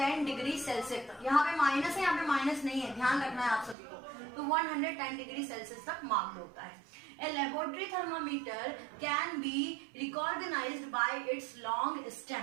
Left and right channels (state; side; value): drops out; left; at 3.8 s